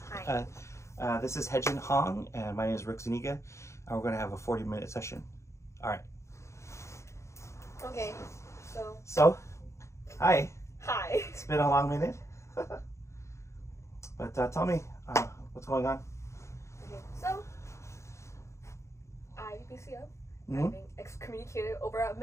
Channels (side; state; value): right; late; 0.14 ms